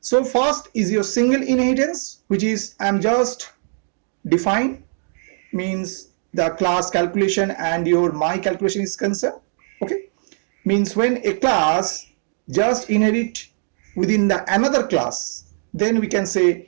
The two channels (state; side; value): silent; left; digital silence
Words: So first is your single inheritance, which is I'm just define, means the class calculation and your my calculation is concerned. Okay, means when a class just inherit within the another class, then we can